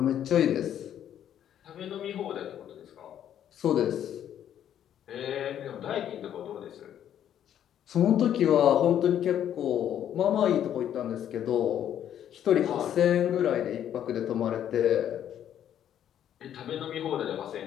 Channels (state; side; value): quieter; right; 10.3 dB